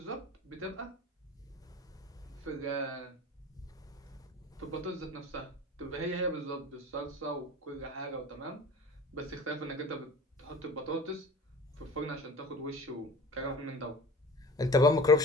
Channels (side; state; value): both; normal; correlation 0.41